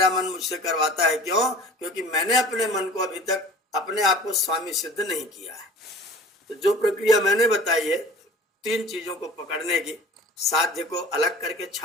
मन मुझसे करवाता है। क्यों? क्योंकि मैंने अपने मन को अभी तक अपने आप को स्वामी सिद्ध नहीं किया है। तो जो प्रक्रिया मैंने बताई है 3 चीजों को पकड़ने की, साध्य को अलग करके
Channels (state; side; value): normal; both; correlation 0.42